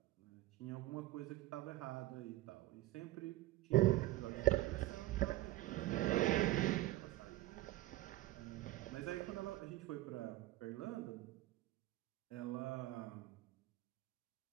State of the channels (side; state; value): left; quieter; 16.8 dB